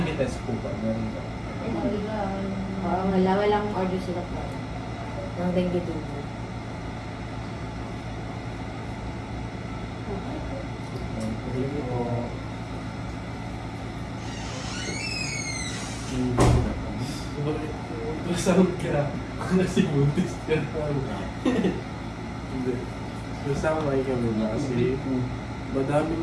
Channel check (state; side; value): identical; both; correlation 1.00